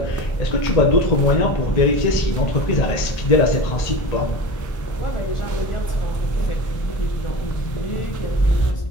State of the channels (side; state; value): right; late; 1.8 ms